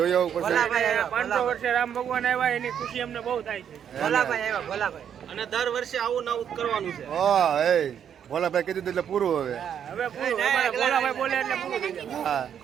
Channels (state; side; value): quieter; left; 8.7 dB